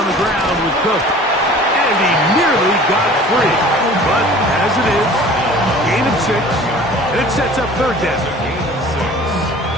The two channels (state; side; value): normal; both; correlation 0.45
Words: the ground with Cook. And he nearly got free. But as it is, gain of 6, and it sets up third down.